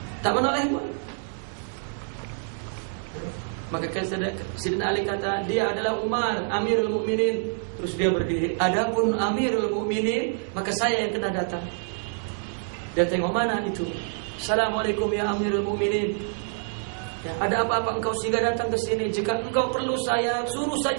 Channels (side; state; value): left; silent; 61 dB below the other